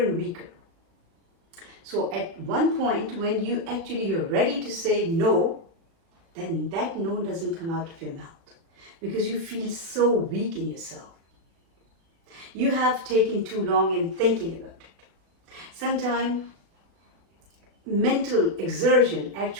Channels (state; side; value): late; left; 36 ms